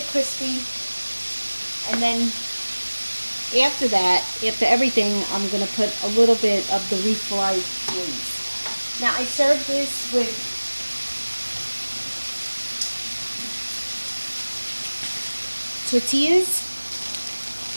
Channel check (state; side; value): inverted; both; correlation -1.00